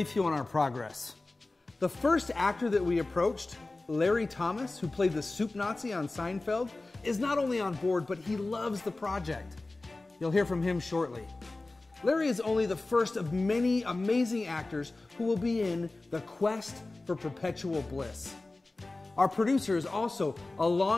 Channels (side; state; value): right; quieter; 3.1 dB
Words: you on our progress. The first actor that we approached, Larry Thomas, who played the soup Nazi on Seinfeld, is not only on board, but he loves the project. You'll hear from him shortly. Larry is only the first of many amazing actors who will be in The Quest for Perpetual Bliss. Our producer is also a